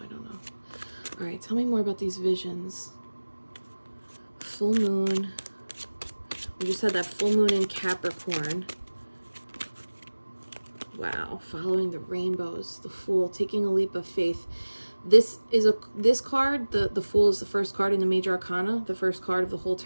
I don't know. All right, tell me more about these visions. Full moon. We just had that full moon in Capricorn. Wow, following the rainbows, the Fool, taking a leap of faith. This card, the Fool is the first card in the Major Arcana, the first card of the whole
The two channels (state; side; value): inverted; both; correlation -1.00